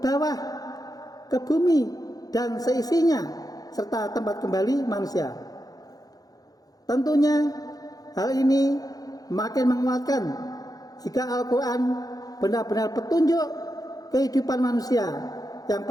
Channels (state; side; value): late; right; 0.18 ms